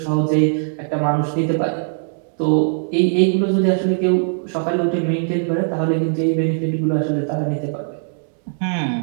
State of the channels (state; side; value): silent; left; digital silence